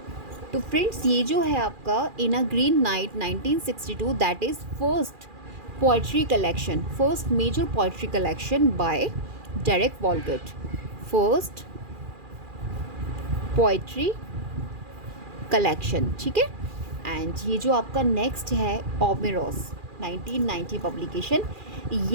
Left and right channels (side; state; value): left; late; 2.4 ms